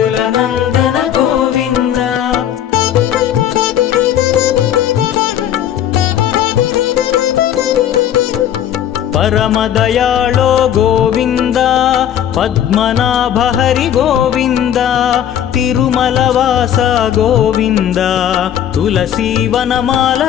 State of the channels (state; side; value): quieter; right; 10.3 dB